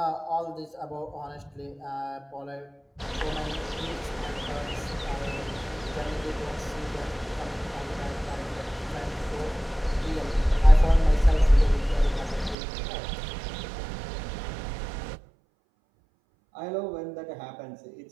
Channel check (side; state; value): left; drops out; at 12.6 s